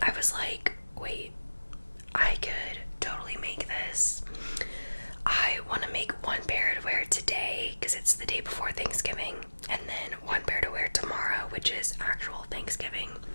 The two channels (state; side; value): inverted; both; correlation -1.00